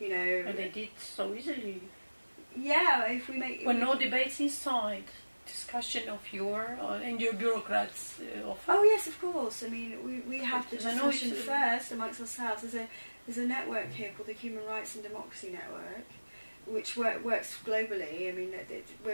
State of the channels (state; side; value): inverted; both; correlation -1.00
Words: know. And they did so easily. Yeah, if we make... Well, no debates inside. Discussion of your and your bureaucrats often. Oh yes, of course. I mean, we have the discussion first amongst ourselves. There's a network here called the Human Rights and Democracy Network, which works globally. I mean,